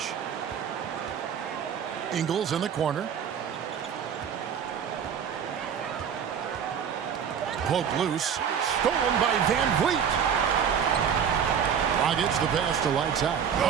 Ingles in the corner. Poke loose. Stolen by Van Vliet. Dragic the pass to lights out.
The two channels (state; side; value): quieter; left; 7.8 dB